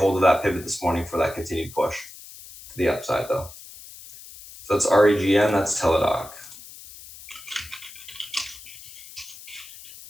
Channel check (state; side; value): noise; left; hiss, 17 dB below the sound